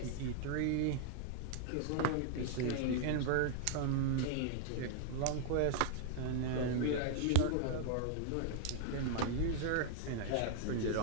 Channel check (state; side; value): different; both; correlation 0.00